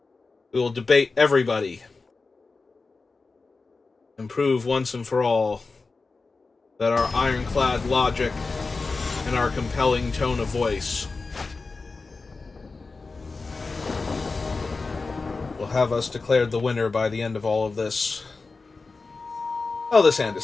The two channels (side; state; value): right; quieter; 4.0 dB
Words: We will debate everybody. And prove once and for all that our ironclad logic and our compelling tone of voice will have us declared the winner by the end of all of this. Oh, this hand is